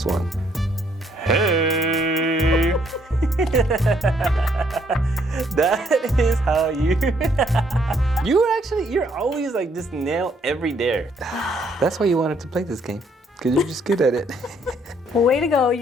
one. Hey. That is how you. You're always like just nail every dare. That's why you wanted to play this game, because you're just good at it. Well, way to go.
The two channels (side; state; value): both; normal; correlation 0.68